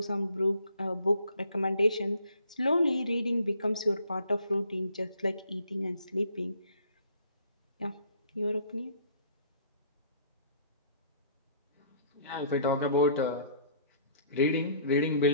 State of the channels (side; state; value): both; inverted; correlation -0.58